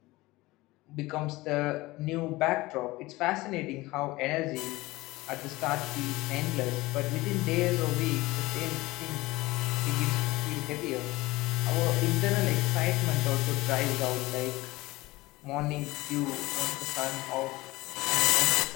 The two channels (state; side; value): quieter; right; 20.0 dB